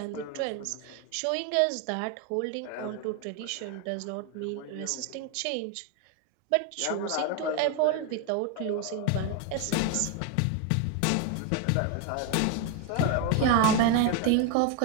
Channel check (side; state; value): both; different; correlation 0.01